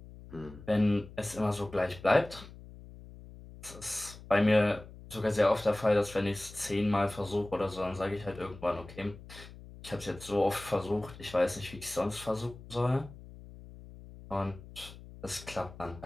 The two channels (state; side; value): noise; left; hum, 17 dB below the sound